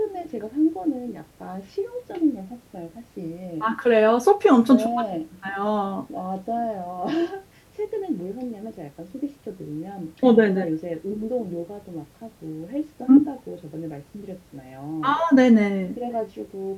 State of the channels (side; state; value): both; identical; correlation 1.00